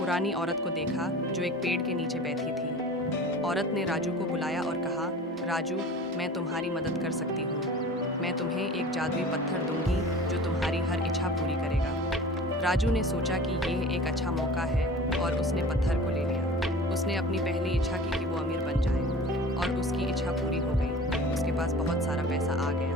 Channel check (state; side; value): normal; both; correlation 0.39